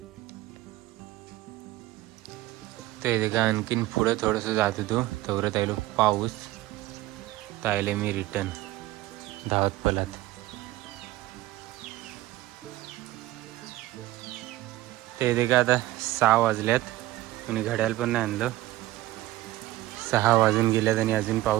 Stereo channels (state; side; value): quieter; left; 16.8 dB